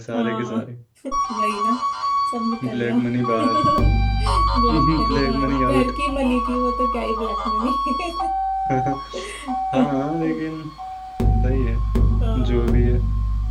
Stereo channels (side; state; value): both; identical; correlation 1.00